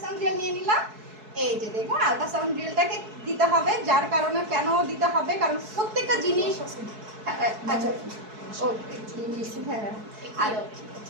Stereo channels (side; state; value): left; late; 4.6 ms